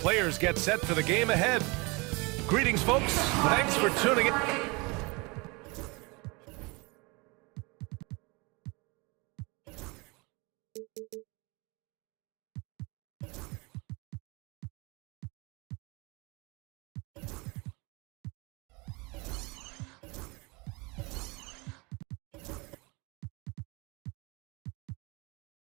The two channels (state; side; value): quieter; left; 27.1 dB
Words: get set for the game ahead. Greetings, folks. Thanks for tuning in.